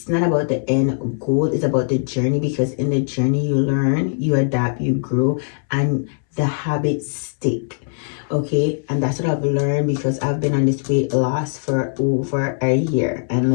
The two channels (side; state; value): right; silent; 64 dB below the other